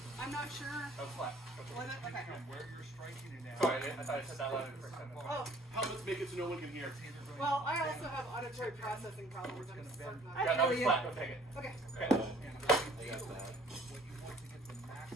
I'm not sure. That was flat. Was it? Okay. Sorry, I thought I said that loud for a second. Oh, Helmets make it so no one can hear. well, I also have auditory processing problems. I'm certain of I Yeah, it. that feel was you. flat. Go take it. Okay. Okay.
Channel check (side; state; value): both; normal; correlation 0.56